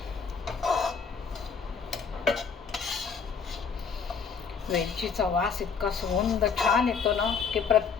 वेलचीचा वास इतका सुगंध छान येतो ना, की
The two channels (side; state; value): right; quieter; 5.9 dB